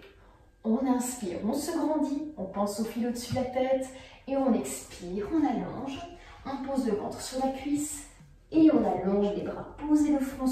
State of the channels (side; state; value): both; identical; correlation 1.00